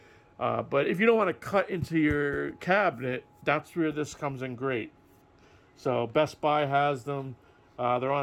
But if you don't want to cut into your cabinet, that's where this comes in great. So Best Buy has them. They're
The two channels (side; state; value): both; identical; correlation 1.00